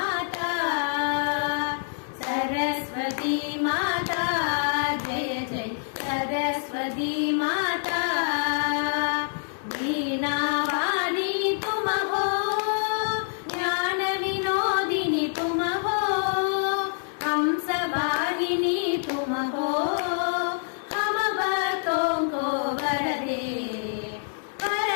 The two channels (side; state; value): right; silent; 61 dB below the other